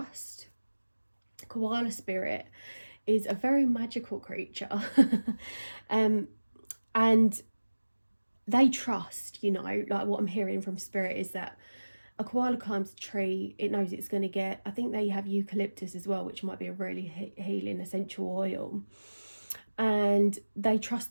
Koala spirit is a very magical creature, and they trust, you know, like what I'm hearing from spirit is that a koala climbs a tree, it knows it's going to get, I think they have eucalyptus as well, which might be a really healing essential oil, and they trust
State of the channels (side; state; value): both; inverted; correlation -1.00